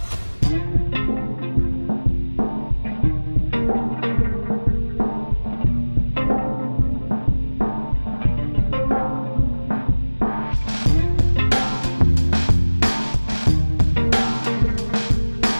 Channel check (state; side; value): inverted; both; correlation -1.00